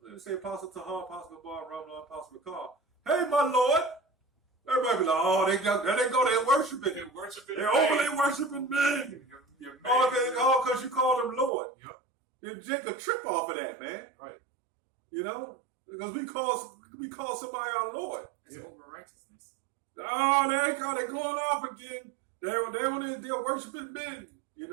let me say Apostle Tahar, Apostle Gabar, Ramla, Apostle Bakar. Hey, my Lord." Everybody be like, "Oh, there they go, they're worshiping. They're worshiping. They're overly worshiping men. You're Oh, because you call them Lord." Yep. You take a trip off of that, man. Right. You know? Because we call somebody our Lord. It's over righteousness. Oh, they're going off again. They're worshiping men. You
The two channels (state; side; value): drops out; left; at 11.5 s